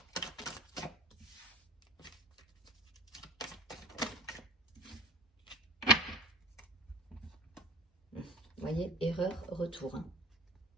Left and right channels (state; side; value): normal; both; correlation 0.35